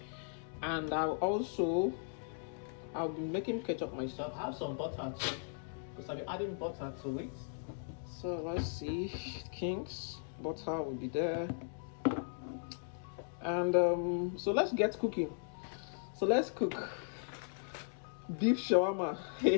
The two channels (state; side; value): silent; right; digital silence